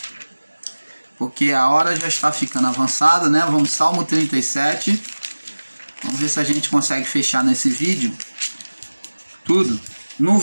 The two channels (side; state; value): both; inverted; correlation -1.00